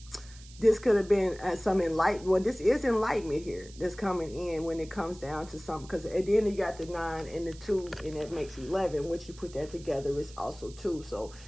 this could have been some enlightenment. Well, this is enlightenment here that's coming in when it comes down to something. Because at the end you got the 9 and the 2, and that makes 11. Once you put that together, it's also 2. So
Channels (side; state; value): right; noise; hiss, 21 dB below the sound